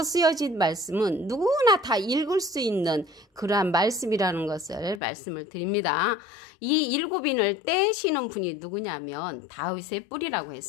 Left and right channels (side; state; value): right; drops out; at 5.0 s